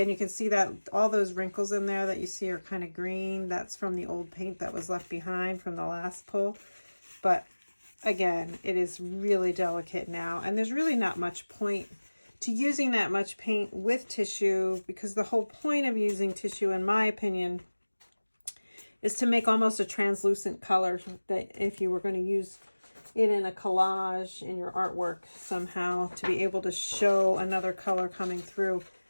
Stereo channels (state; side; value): inverted; both; correlation -1.00